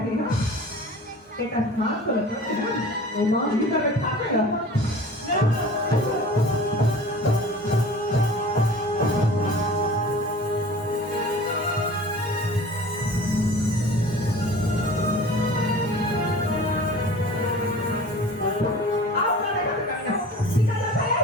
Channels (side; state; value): both; normal; correlation 0.42